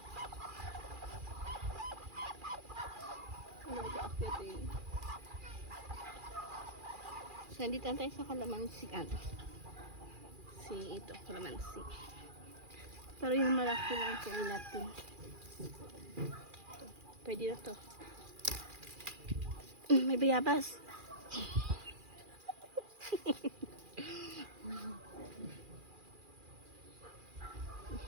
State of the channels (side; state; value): left; late; 2.4 ms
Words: Ano ba akyat eh? So, nandito na tayo sa kalamansi. Ano? Si ito, kalamansi. Pero yung malaki lang ito natin. Pwede na to. May bayabas.